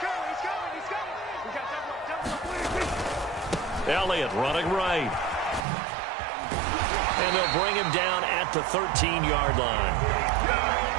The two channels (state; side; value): drops out; left; at 5.7 s